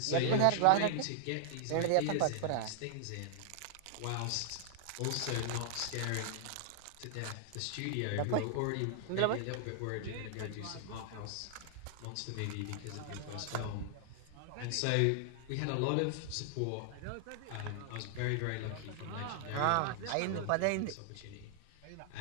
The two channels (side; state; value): both; different; correlation -0.01